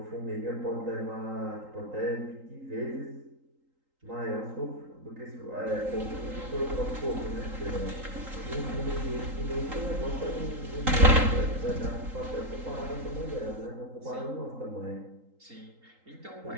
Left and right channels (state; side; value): late; left; 3.8 ms